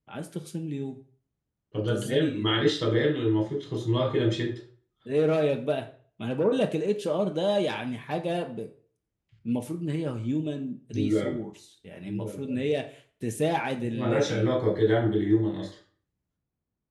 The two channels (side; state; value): both; identical; correlation 1.00